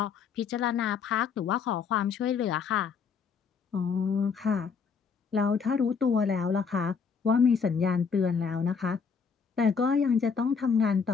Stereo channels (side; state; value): right; quieter; 5.9 dB